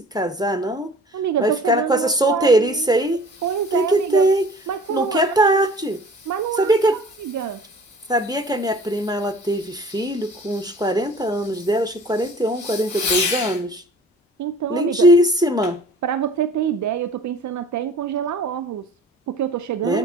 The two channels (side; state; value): both; normal; correlation 0.47